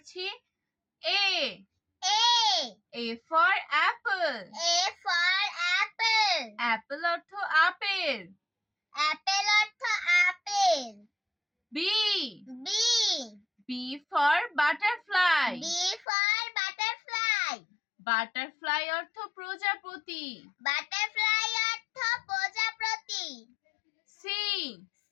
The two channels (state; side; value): drops out; right; at 16.1 s